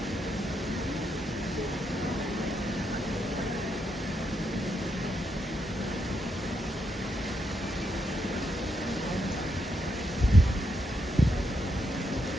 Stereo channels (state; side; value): normal; both; correlation 0.80